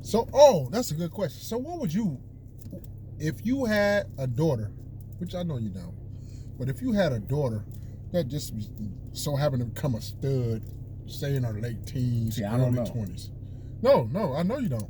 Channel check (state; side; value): identical; both; correlation 1.00